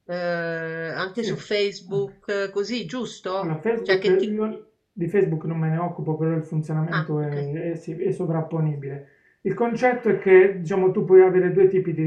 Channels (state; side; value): identical; both; correlation 1.00